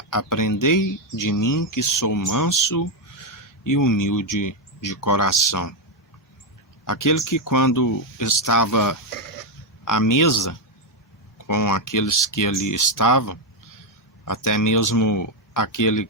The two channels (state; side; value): normal; both; correlation 0.04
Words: aprendei de mim que sou manso e humilde de coração. Aquele que quando estava à mesa com aqueles que ali estavam, até mesmo aquele